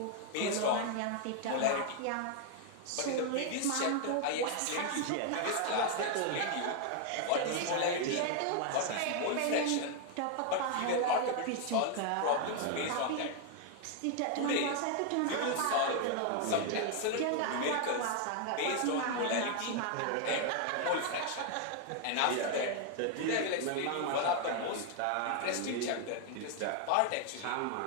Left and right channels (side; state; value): both; different; correlation 0.00